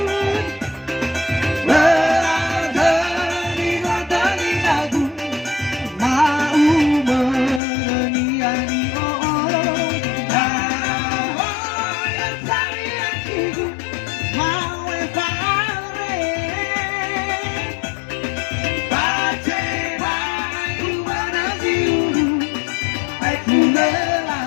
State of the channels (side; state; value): right; drops out; at 7.6 s